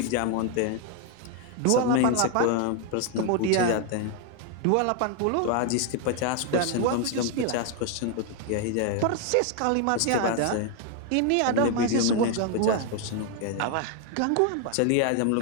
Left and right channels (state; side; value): different; both; correlation 0.01